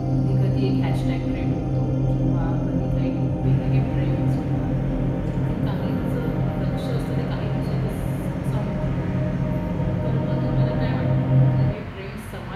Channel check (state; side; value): identical; both; correlation 1.00